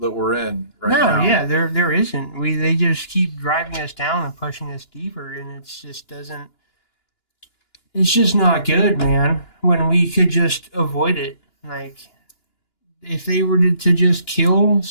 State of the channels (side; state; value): right; late; 2.9 ms